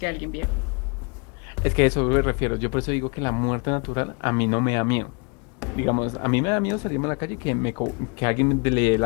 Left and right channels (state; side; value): quieter; right; 33.5 dB